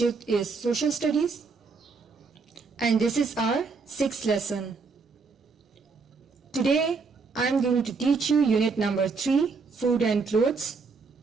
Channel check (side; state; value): left; quieter; 4.6 dB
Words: is social studies. And this is our 6th lesson. Today I am going to teach you unit number 3, food and clothes.